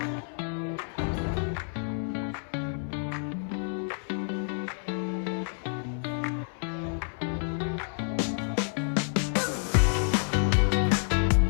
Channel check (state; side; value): silent; right; 59 dB below the other